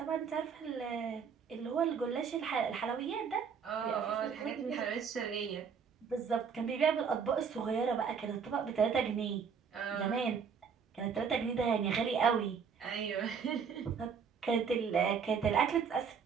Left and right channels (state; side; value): quieter; left; 6.4 dB